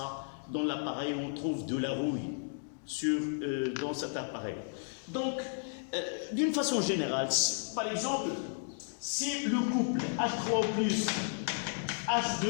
dans l'appareil où on trouve de la rouille dans cet appareil. Donc, d'une façon générale, par exemple, si le couple H3O plus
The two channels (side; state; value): right; silent; digital silence